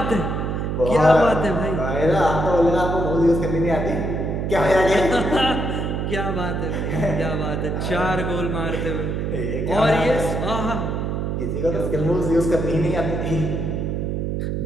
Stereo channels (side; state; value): right; noise; hum, 1 dB below the sound